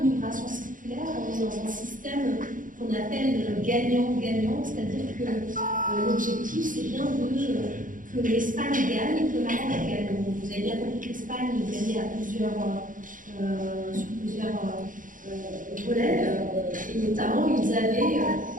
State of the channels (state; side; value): late; left; 0.39 ms